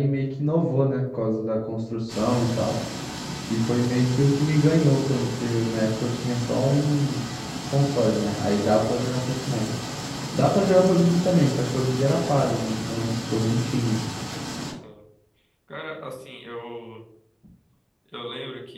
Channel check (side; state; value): both; identical; correlation 1.00